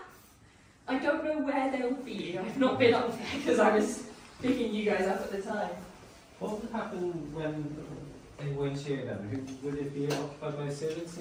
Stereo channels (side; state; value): both; identical; correlation 1.00